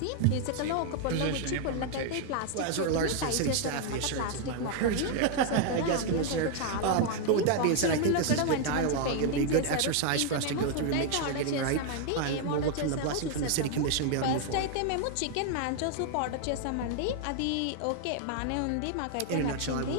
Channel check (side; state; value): both; different; correlation 0.00